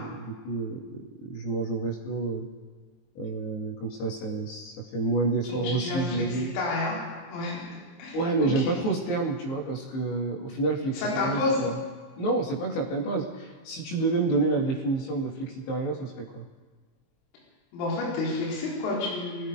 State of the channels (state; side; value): late; right; 23 ms